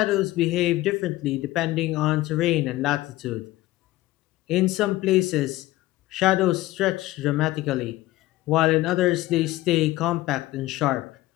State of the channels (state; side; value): quieter; right; 17.3 dB